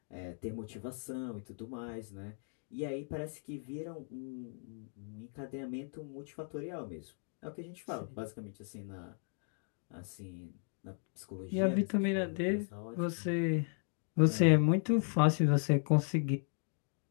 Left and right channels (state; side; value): silent; right; 54 dB below the other